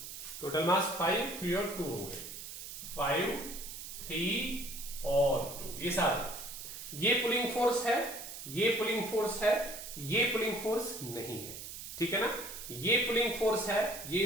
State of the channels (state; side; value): noise; right; hiss, 10 dB below the sound